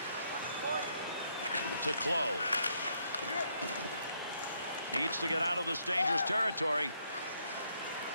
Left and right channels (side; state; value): both; inverted; correlation -0.73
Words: To Clough. Needs to get out of this dangerous territory.